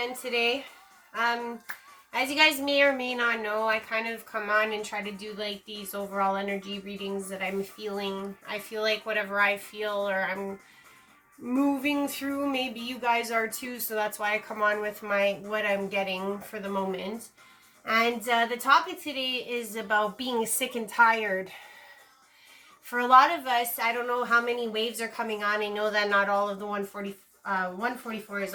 today. As you guys may or may not know, I kind of come on and try to do like these overall energy readings that I'm feeling. I feel like whatever I feel or I'm moving through, maybe you guys are too, so that's why I come on with what I'm getting for the moment. And the topic today is about being sick and tired. For a lot of us, I don't know how many waves are coming on. I know that not all of the 144 is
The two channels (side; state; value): both; identical; correlation 1.00